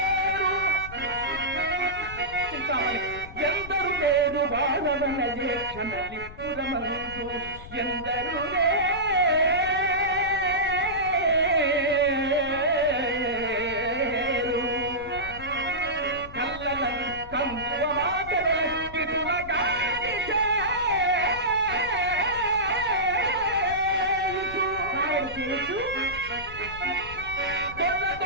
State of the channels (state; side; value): noise; left; rumble, 14 dB below the sound